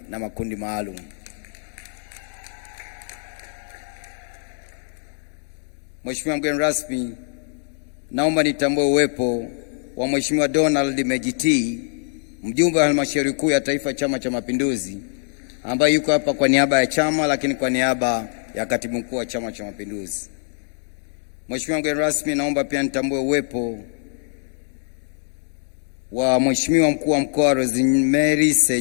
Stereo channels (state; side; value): silent; right; digital silence